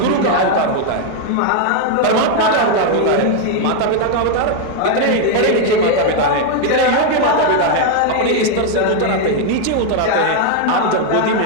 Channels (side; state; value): both; different; correlation 0.01